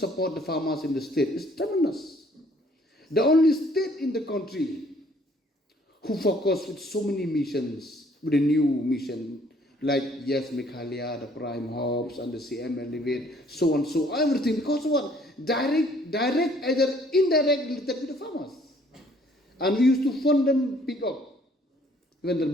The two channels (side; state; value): both; normal; correlation 0.61